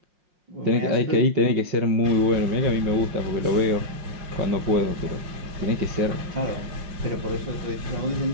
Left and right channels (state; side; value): late; left; 5.6 ms